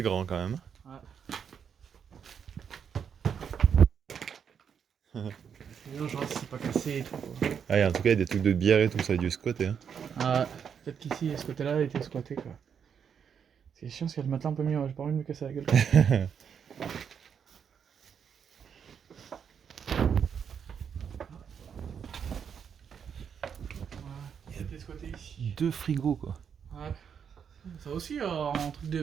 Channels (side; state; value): left; quieter; 7.4 dB